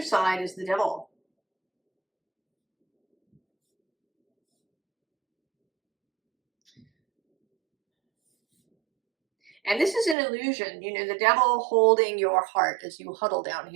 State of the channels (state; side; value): drops out; left; at 10.2 s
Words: is the Devil. And this is an illusion, you know, the Devil holding your heart as you huddle down